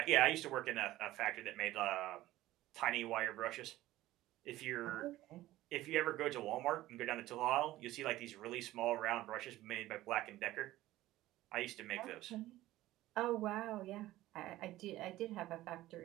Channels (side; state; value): left; quieter; 16.1 dB